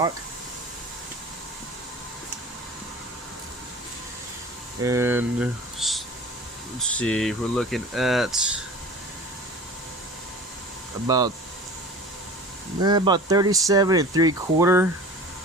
And let's see, we're looking at about 37 3/4.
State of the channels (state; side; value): normal; both; correlation 0.40